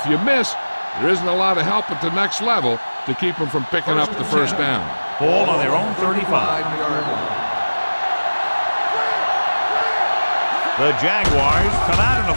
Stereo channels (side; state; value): both; inverted; correlation -1.00